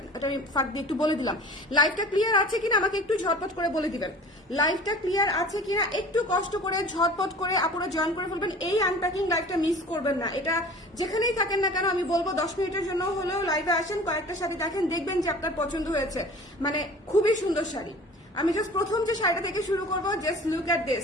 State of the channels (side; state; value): both; normal; correlation 0.42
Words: এটা আমি ফাঁক দিয়ে একটু বলে দিলাম। লাইভটা ক্লিয়ার আছে কিনা আমাকে একটু ঝটপট করে বলে দিবেন। লাইভটা ক্লিয়ার আছে কিনা একটু কষ্ট করে ঝটপট করে আপনারা জয়েন করে ফেলবেন। এই আনপ্যাকিং লাইভটা মিস করবেন না। এটা যেখানেই থাকেন না কেন আমি বলবো 10 মিনিটের জন্য হলেও লাইভে আসেন, কয়েকটা শাড়ি দেখেন, দেখবেন যে আপনার পছন্দ হয়েছে। মানে খুবই সুন্দর শাড়ি। আমি জাস্ট প্রথম যে শাড়িটা থেকে শুরু করবো, just look at